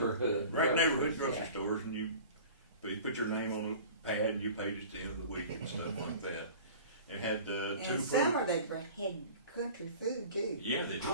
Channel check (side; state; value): both; inverted; correlation -0.42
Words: Right, groceries, neighborhood grocery yeah. stores, and you put your name on a pad and you paid at the end of the week and stuff like that. It had two And summer they had country food too. Yeah, they did.